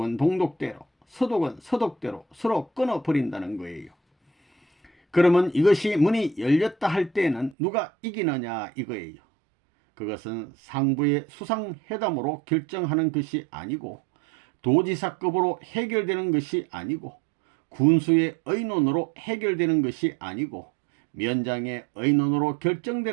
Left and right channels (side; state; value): left; drops out; at 7.6 s